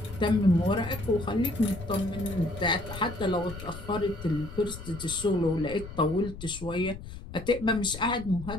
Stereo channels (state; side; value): noise; left; rumble, 12 dB below the sound